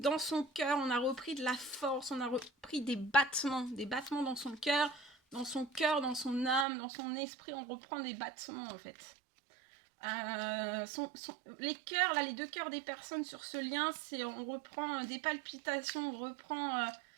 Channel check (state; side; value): drops out; left; at 6.7 s